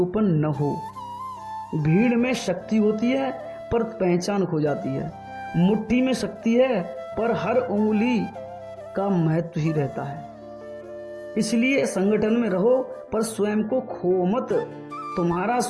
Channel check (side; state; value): both; identical; correlation 1.00